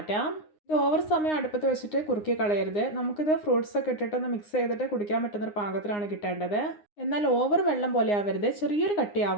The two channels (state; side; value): late; right; 9.7 ms